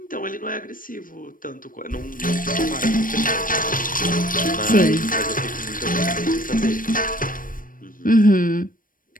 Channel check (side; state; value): right; late; 0.40 ms